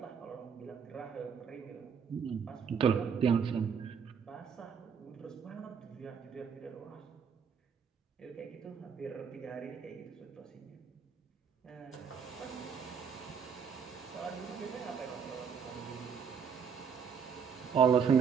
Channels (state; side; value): quieter; left; 6.7 dB